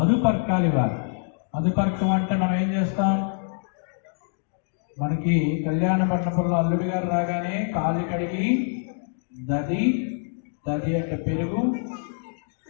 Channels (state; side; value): silent; right; digital silence